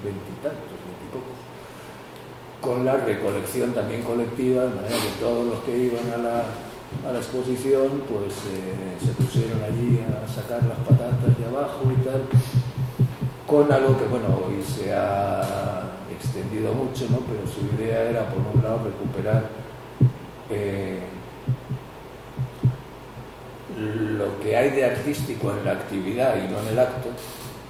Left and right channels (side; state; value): both; identical; correlation 1.00